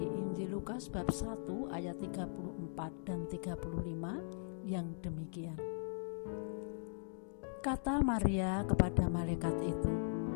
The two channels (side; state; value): right; silent; digital silence